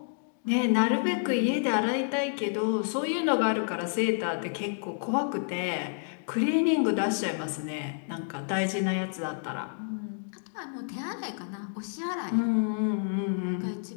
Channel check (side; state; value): right; silent; digital silence